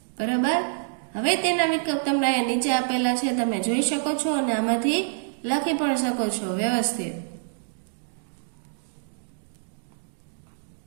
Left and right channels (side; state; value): left; silent; digital silence